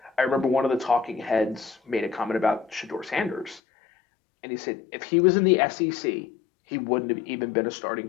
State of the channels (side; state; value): right; drops out; at 3.6 s